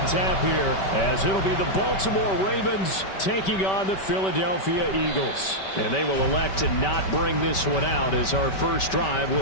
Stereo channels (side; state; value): right; late; 5.2 ms